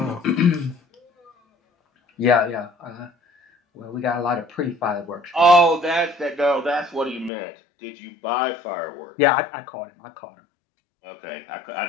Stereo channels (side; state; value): right; drops out; at 7.3 s